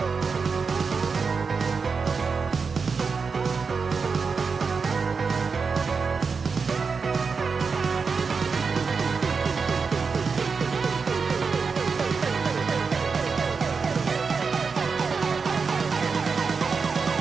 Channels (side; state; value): left; quieter; 5.1 dB